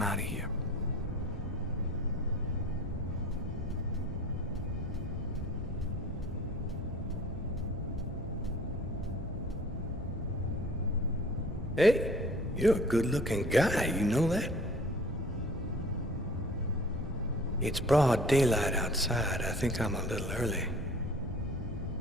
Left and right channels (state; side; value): normal; both; correlation 0.47